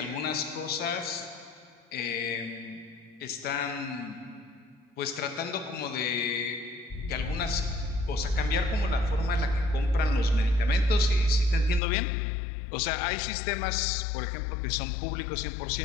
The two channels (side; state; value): right; drops out; at 11.8 s